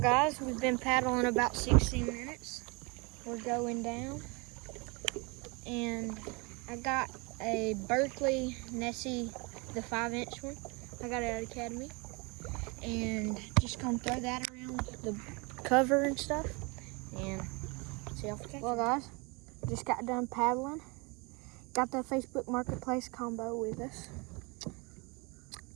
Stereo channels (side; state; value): left; quieter; 28.8 dB